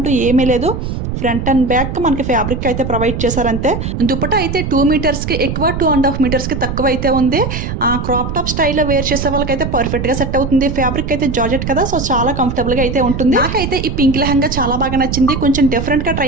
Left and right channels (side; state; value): right; noise; rumble, 4 dB below the sound